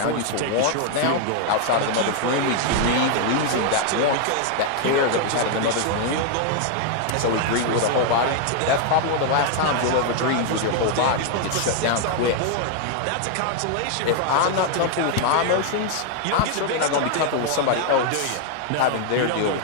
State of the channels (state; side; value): different; both; correlation 0.00